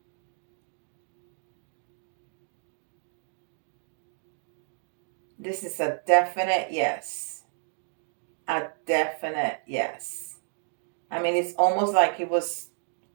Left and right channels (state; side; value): silent; left; digital silence